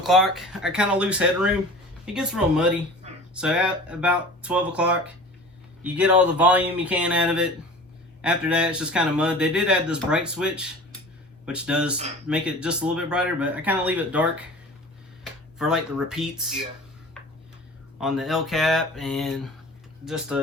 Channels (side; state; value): both; normal; correlation 0.40